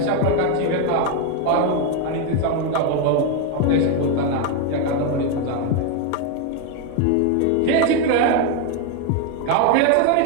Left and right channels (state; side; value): different; both; correlation 0.02